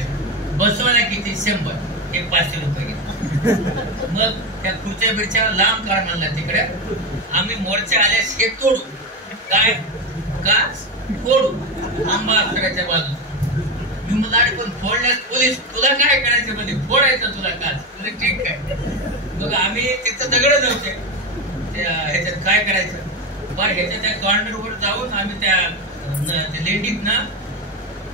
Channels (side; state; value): both; normal; correlation 0.16